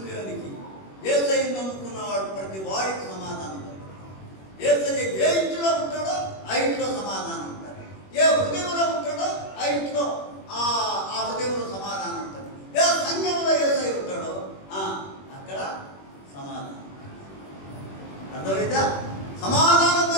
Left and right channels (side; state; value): right; late; 21 ms